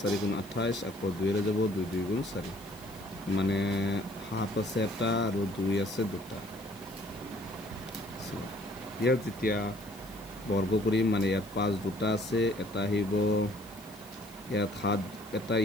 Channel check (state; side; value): noise; left; hiss, 21 dB below the sound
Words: 4 গুণ 28 আকৌ 2 যাব 2 2 গুণ 4 মানে 7 আছে এটা আৰু 2 আছে দুটা ইয়াত যেতিয়া বৰ্গ কৰিম মানে ইয়াত 5 দুটা আছে এটা আহিব ইয়াত 7 এটা